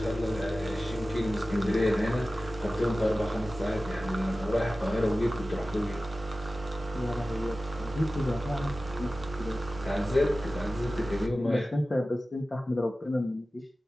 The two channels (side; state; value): both; normal; correlation 0.95